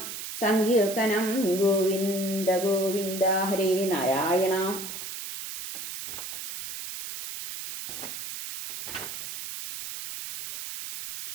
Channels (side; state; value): right; noise; hiss, 8 dB below the sound